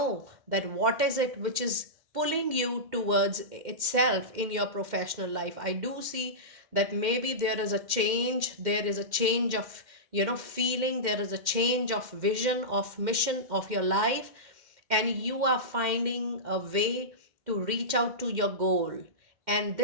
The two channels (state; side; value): late; left; 2.1 ms